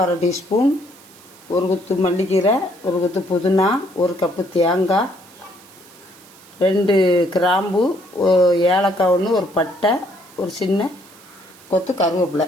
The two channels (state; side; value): noise; right; hiss, 24 dB below the sound